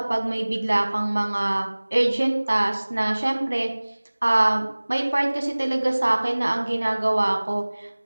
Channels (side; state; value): both; inverted; correlation -1.00